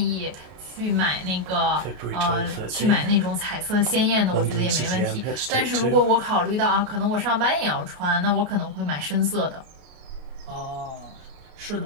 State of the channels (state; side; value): late; left; 33 ms